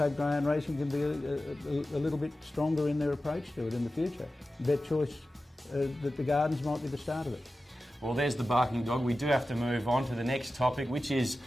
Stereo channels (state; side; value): normal; both; correlation 0.94